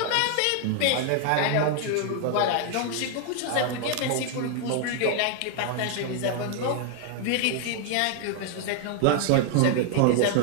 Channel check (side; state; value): both; different; correlation 0.00